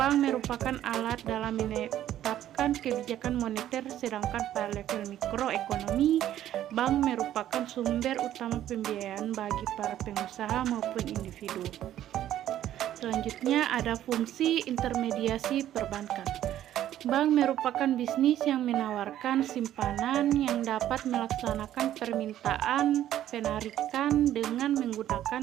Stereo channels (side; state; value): left; quieter; 12.1 dB